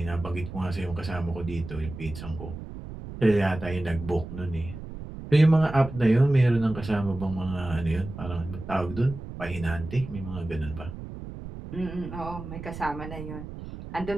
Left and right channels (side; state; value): right; noise; rumble, 11 dB below the sound